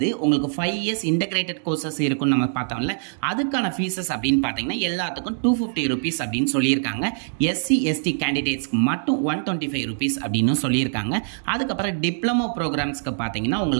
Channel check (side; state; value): left; silent; digital silence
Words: உங்களுக்கு 5 years இன்டகிரேட்டட் கோர்சஸ் இருக்குன்னு நம்ம பார்த்தோம்ல, அதுக்கான ஃபீஸஸ் அப்படின்னு பார்த்தீங்கன்னா எல்லாத்துக்கும் 250 rupees அப்படின்னு சொல்லியிருக்காங்க. எஸ்சி எஸ்டி கேண்டிடேட்ஸ்க்கு மட்டும் 125 rupees அப்படின்னு சொல்லியிருக்காங்க. அதுக்கப்புறம் டிப்ளமோ ப்ரோக்ராம்ஸ்க்கு பார்த்தீங்கன்னா